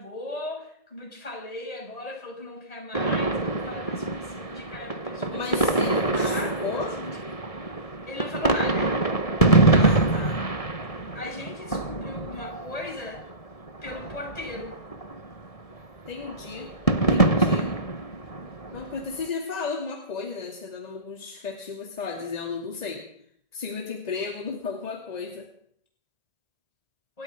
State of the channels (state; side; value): late; right; 1.7 ms